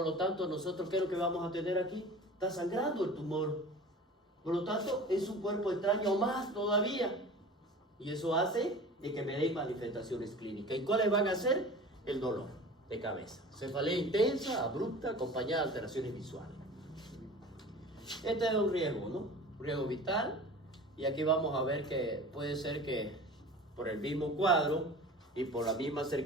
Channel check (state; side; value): normal; both; correlation 0.39